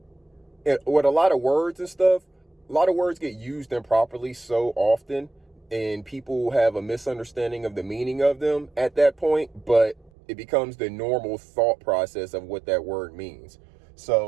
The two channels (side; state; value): left; drops out; at 10.1 s